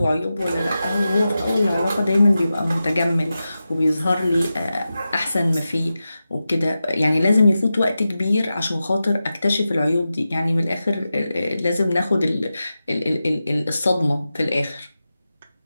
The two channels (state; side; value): inverted; both; correlation -0.92